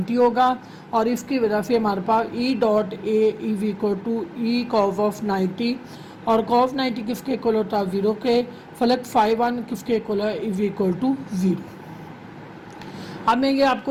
होगा, और इसकी वजह से हमारे पास E dot A is equal to E cos of 90, और कॉस 90 किसके इक्वल होता है, 0 के। फ्लक्स φ1 किसके इक्वल है, इज इक्वल टू 0। अब मैं ये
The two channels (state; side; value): identical; both; correlation 1.00